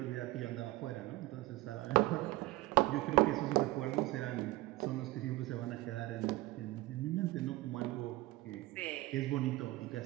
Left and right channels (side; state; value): left; quieter; 19.0 dB